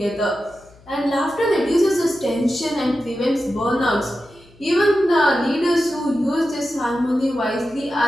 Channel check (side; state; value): left; noise; hum, 26 dB below the sound